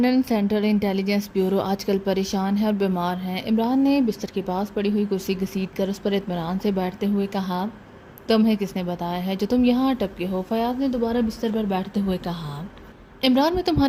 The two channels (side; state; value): both; identical; correlation 1.00